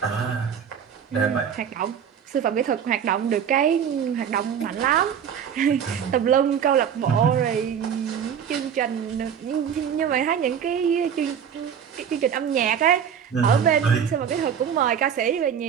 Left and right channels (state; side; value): quieter; left; 8.1 dB